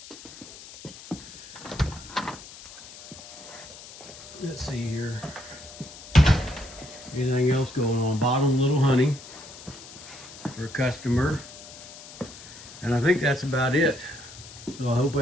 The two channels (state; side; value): noise; left; hiss, 16 dB below the sound